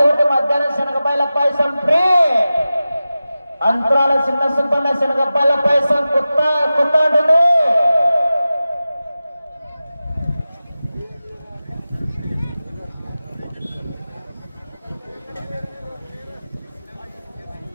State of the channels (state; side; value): inverted; both; correlation -0.95